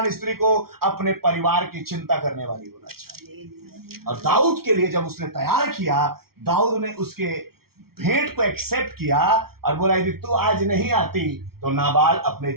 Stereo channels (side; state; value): left; late; 0.94 ms